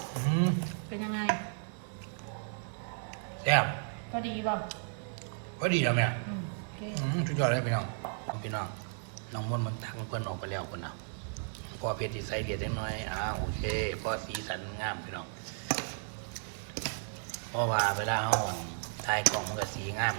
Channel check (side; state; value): left; silent; 55 dB below the other